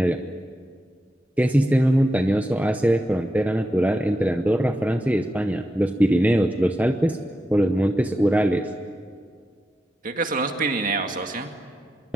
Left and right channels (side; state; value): both; normal; correlation 0.87